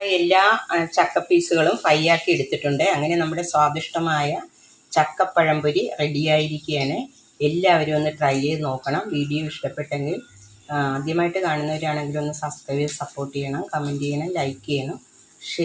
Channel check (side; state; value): both; identical; correlation 1.00